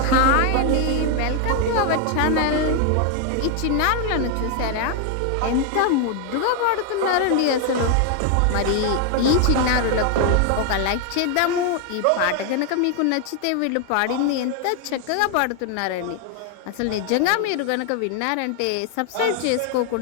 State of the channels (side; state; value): both; different; correlation 0.00